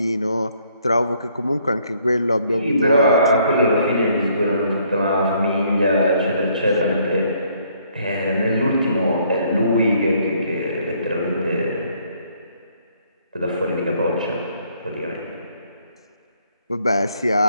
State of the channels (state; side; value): inverted; both; correlation -0.67